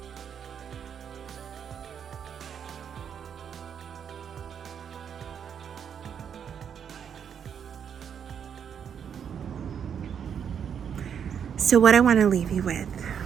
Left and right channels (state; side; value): quieter; left; 7.9 dB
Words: So what I want to leave you with